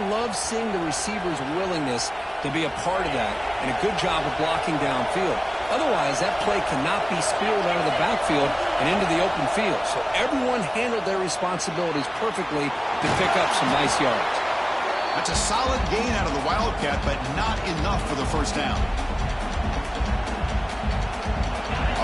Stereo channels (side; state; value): both; identical; correlation 1.00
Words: love seeing the receiver's willingness to be a part of that and a good job of blocking downfield. Otherwise, that play cannot be spilled out of the backfield and into the open field. So everyone handled their responsibilities perfectly to pick up some nice yards. That's a solid gain out of the Wildcat, but not enough for the first down.